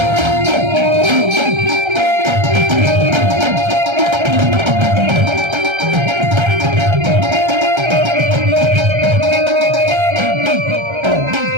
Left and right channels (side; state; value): left; late; 1.3 ms